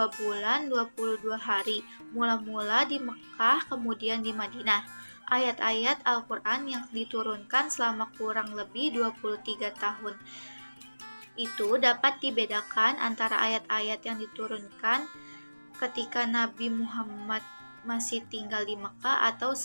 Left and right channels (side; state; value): both; inverted; correlation -1.00